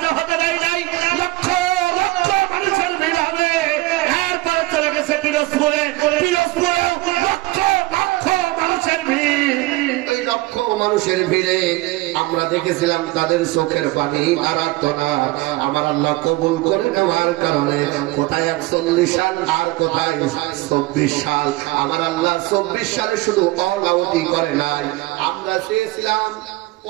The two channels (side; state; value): left; quieter; 20.3 dB